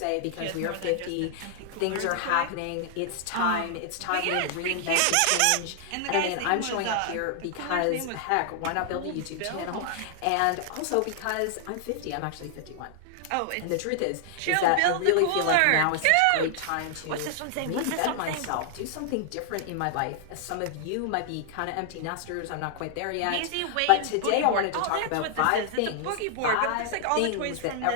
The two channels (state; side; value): different; both; correlation 0.00